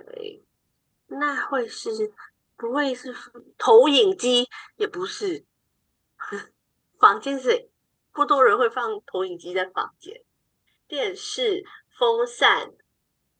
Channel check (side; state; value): both; identical; correlation 1.00